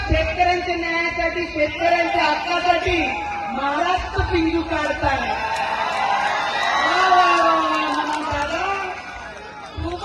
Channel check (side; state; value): both; identical; correlation 1.00